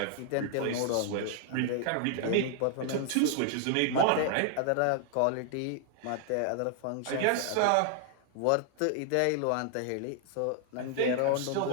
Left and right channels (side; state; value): both; different; correlation 0.00